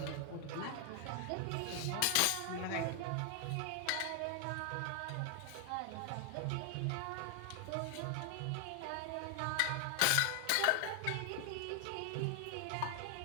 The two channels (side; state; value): both; different; correlation 0.00